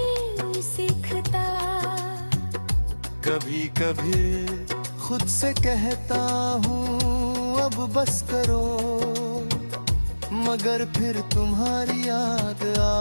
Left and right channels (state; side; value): inverted; both; correlation -1.00